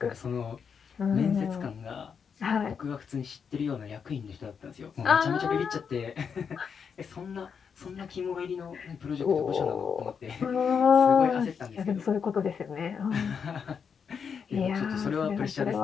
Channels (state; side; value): quieter; right; 6.6 dB